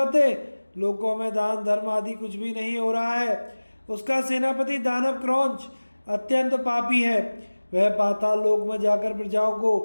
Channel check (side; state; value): both; inverted; correlation -1.00